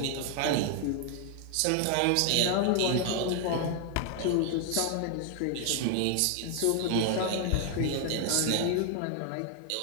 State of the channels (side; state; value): both; different; correlation 0.00